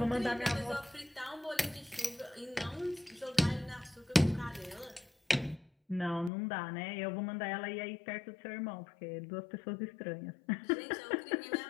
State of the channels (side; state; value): right; drops out; at 6.3 s